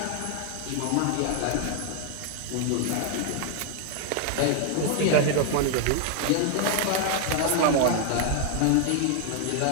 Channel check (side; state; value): both; different; correlation 0.00